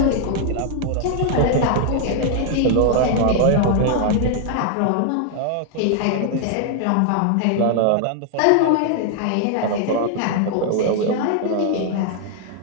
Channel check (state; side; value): different; both; correlation 0.00